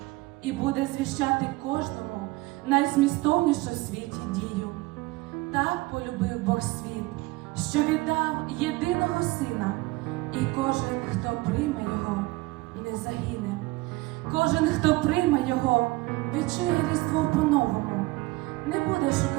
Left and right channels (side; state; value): left; quieter; 21.4 dB